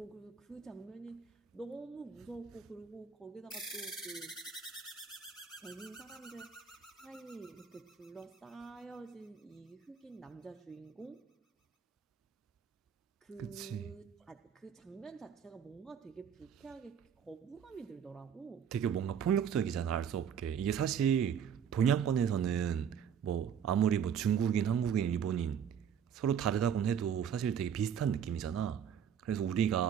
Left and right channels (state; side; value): quieter; left; 8.1 dB